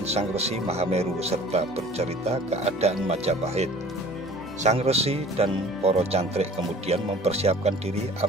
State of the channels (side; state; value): both; normal; correlation 0.47